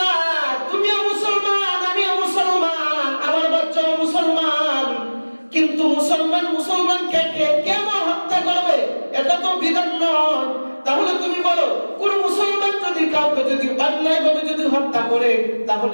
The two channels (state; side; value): inverted; both; correlation -1.00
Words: তুমিও মুসলমান, আমিও মুসলমান, আমার বাচ্চাও মুসলমান, কিন্তু মুসলমানকে কেন হত্যা করবে? এটা তো বিধান নয়। তাহলে তুমি বলো, কোন মুসলমান যদি কাউকে যদি অন্যায়ভাবে যদি হত্যা করে